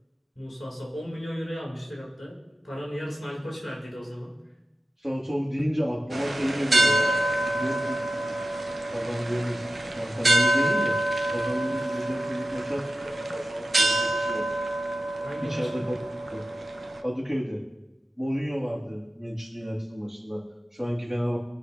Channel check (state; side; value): normal; both; correlation 0.94